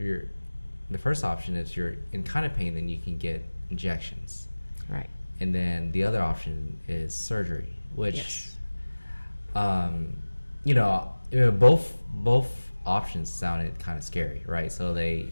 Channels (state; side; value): inverted; both; correlation -1.00